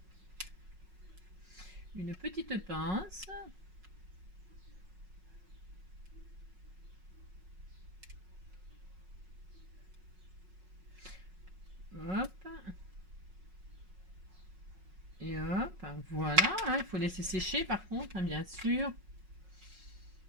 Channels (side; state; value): left; late; 5.4 ms